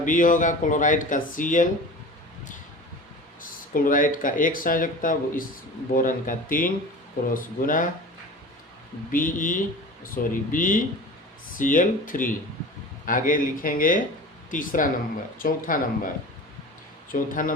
होगा, क्लोराइड का Cl, क्लोराइड का 1 संयोजकता, इस बोरन का 3 क्रॉस गुना BeCl3। आगे लिखेंगे चौथा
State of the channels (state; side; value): normal; both; correlation 0.36